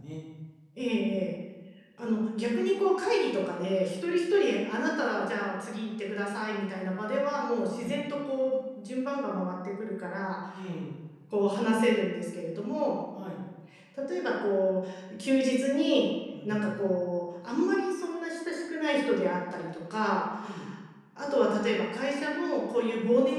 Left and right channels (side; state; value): both; identical; correlation 1.00